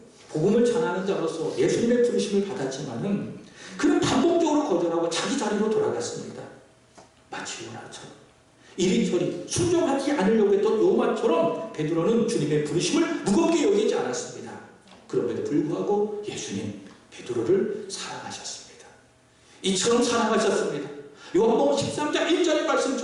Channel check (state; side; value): identical; both; correlation 1.00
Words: 복음을 전하는 자로서 예수님의 부르심을 받았지만은 그는 반복적으로 거절하고 자기 자리로 돌아갔습니다. 마치 요나처럼 이리저리 순종하지 않으려고 했던 요나처럼 베드로는 주님의 부르심을 무겁게 여기지 않았습니다. 그럼에도 불구하고 예수님 베드로를 사랑하셨습니다. 이처럼 사랑하셨습니다. 요한복음 13장 1절의